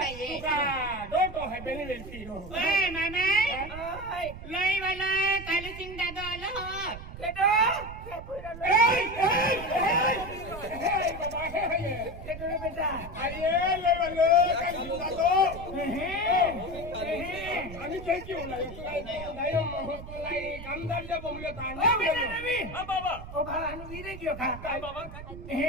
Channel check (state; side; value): noise; right; rumble, 12 dB below the sound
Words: का डोटो हाय बेली वेलती हो ओय मामा ओय लई वाला कालू सिंग दादा आलो हो केटो ए बाबा हे केटो रे बेटा आये ले वाले काली दादो आणि काय की होला नाही महत्वलाई कामदारच्या बोंबले ताणे ओ बेटा रवि हां बाबा ओ भाला नु वीरे गयो खा काय बाबा